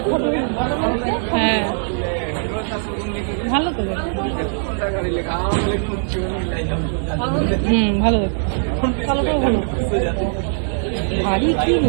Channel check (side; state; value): left; silent; digital silence